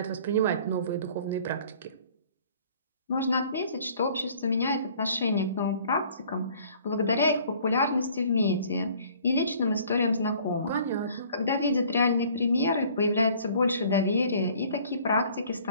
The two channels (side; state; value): both; inverted; correlation -0.54